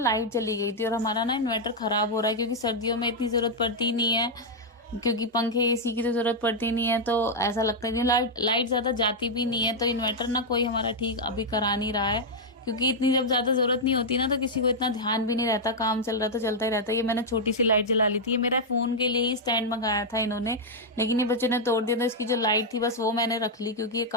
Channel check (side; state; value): both; normal; correlation -0.03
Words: चली गई थी और हमारा ना इन्वर्टर खराब हो रहा है, क्योंकि सर्दियों में इतनी जरूरत पड़ती नहीं है, क्योंकि पंखे एसी की तो जरूरत पड़ती नहीं है। तो ऐसा लगता है कि लाइट लाइट ज्यादा जाती भी नहीं है। तो इन्वर्टर ना कोई हमारा ठीक अभी करा नहीं रहा है, क्योंकि इतनी जब ज्यादा जरूरत नहीं होती ना, तो किसी को इतना ध्यान भी नहीं रहता, काम चल रहा तो चलता ही रहता है। ये मैंने छोटी सी लाइट जला ली थी, ये मेरा फोन के लिए ही स्टैंड मंगाया था इन्होंने, लेकिन ये बच्चों ने तोड़ दिया। तो इसकी जो लाइट थी बस वो मैंने रख ली, क्योंकि ये